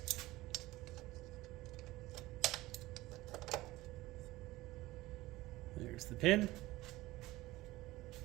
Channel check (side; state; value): left; quieter; 18.3 dB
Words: There's the pin.